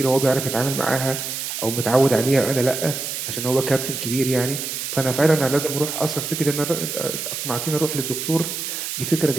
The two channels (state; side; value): noise; right; hiss, 4 dB below the sound